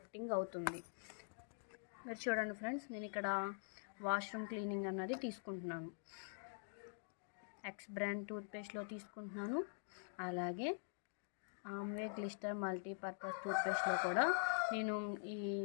అవుతుంది. మీరు చూడండి ఫ్రెండ్స్, నేను ఇక్కడ వాష్రూమ్ క్లీనింగ్ అన్నది తీసుకుంటున్నాను, ఎక్స్ బ్రాండ్ టూత్పేస్ట్లో తీసుకుంటున్నాను. అలాగే ఆమ్వే గ్లిస్టర్ మల్టీపర్పస్ టూత్పేస్ట్లో కూడా నేను ఈ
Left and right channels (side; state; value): right; silent; digital silence